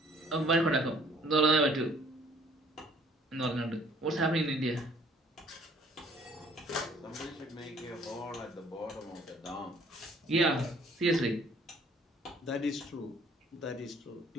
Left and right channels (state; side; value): normal; both; correlation 0.58